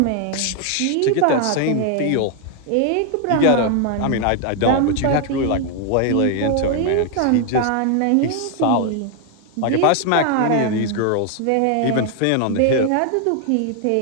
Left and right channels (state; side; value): different; both; correlation 0.00